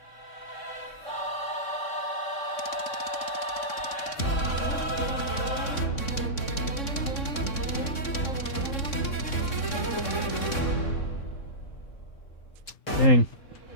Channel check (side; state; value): right; late; 3.6 ms